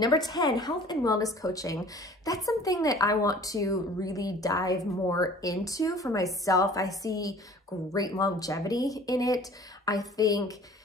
10, health and wellness coaching. That's something that I want to really dive more into for myself. I see great longevity in it. I think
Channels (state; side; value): normal; both; correlation 0.48